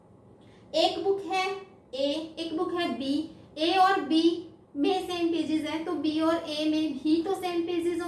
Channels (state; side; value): identical; both; correlation 1.00